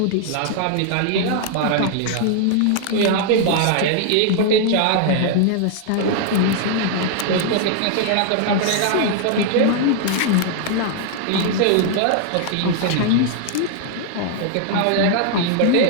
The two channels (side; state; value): both; different; correlation 0.00